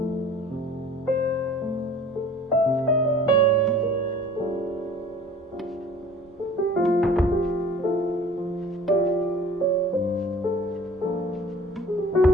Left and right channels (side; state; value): both; normal; correlation 0.47